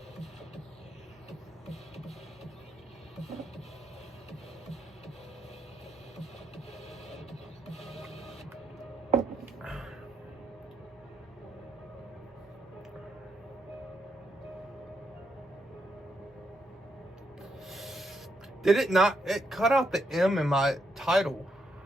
Did it not? It cut out the M in my title.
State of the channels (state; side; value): normal; both; correlation 0.78